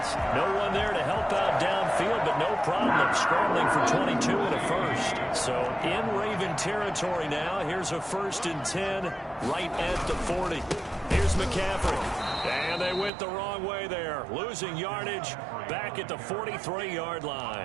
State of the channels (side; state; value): left; drops out; at 13.1 s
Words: No one there to help out downfield, but no problem scrambling for 22 and a 1st. So in Raven territory now. Here's a 1st and 10 right at the 40. Here's McCaffrey. And they went the wrong way there. Losing yardage back at the 43-yard